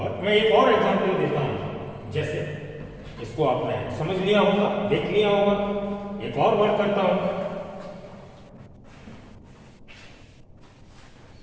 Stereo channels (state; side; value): identical; both; correlation 1.00